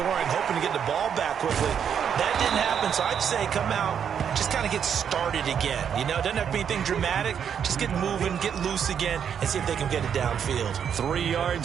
hoping to get the ball back quickly. That didn't happen, so I'd say come out, just kind of get started again. You know, it doesn't have to be anything dramatic. Just get moving, get loose again, and see if they can get it downfield. 3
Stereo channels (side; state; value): left; quieter; 8.0 dB